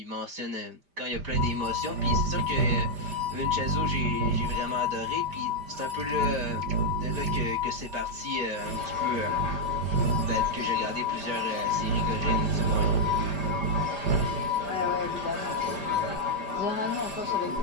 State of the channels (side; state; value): left; late; 5.0 ms